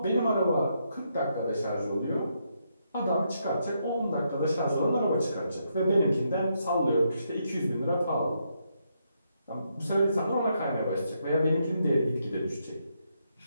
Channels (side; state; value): both; inverted; correlation -0.78